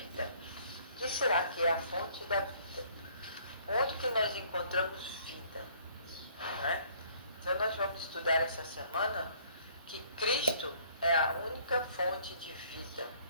O que será que é a fonte da vida? Onde que nós encontramos vida? Não é? Então nós vamos estudar essa semana que Cristo é a única fonte de vida.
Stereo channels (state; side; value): inverted; both; correlation -0.60